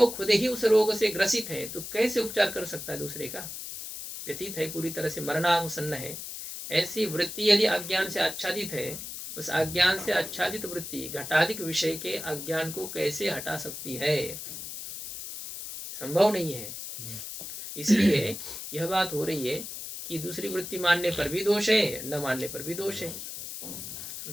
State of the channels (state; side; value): noise; left; hiss, 8 dB below the sound